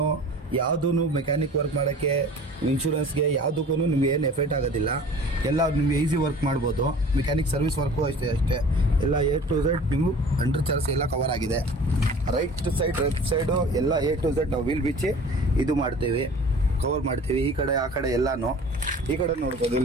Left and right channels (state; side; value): normal; both; correlation 0.44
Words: ಯಾವುದೂ ಮೆಕ್ಯಾನಿಕ್ ವರ್ಕ್ ಮಾಡೋಕ್ಕೆ, ಇನ್ಶೂರೆನ್ಸ್ಗೆ ಯಾವುದಕ್ಕೂ ನಿಮ್ಗೆ ಏನು ಎಫೆಕ್ಟ್ ಆಗೋದಿಲ್ಲ. ಎಲ್ಲ ನಿಮಗೆ ಈಸಿ ವರ್ಕ್ ಮಾಡ್ಬೋದು. ಮೆಕ್ಯಾನಿಕ್ ಸರ್ವಿಸ್ ವರ್ಕು ಅಷ್ಟೇ ಎಲ್ಲ A to Z ನೀವು ಅಂಡರ್ ಚಾರ್ಜ್ ಎಲ್ಲ ಕವರ್ ಆಗಿದೆ. ರೈಟ್ ಸೈಡ್ ಲೆಫ್ಟ್ ಸೈಡು ಎಲ್ಲ A to Z ನಾವು ವೀಲ್ ಬಿಚ್ಚಿ ಇದು ಮಾಡ್ತೀವಿ, ಕವರ್ ಮಾಡ್ತೀವಿ. ಈ ಕಡೆ ಆ ಕಡೆ ಎಲ್ಲನೂ, ಈ ಕಡೆ ನೋಡ್ಬೋದು